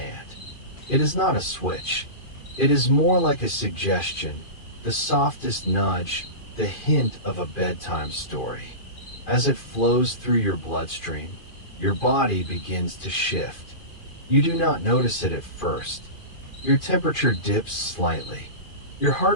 It is not a switch. It is more like a suggestion, the softest nudge, the hint of a bedtime story. As it flows through your bloodstream, your body begins to shift. You do not notice it at first. Your temperature dips slightly. Your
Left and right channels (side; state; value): right; late; 2.4 ms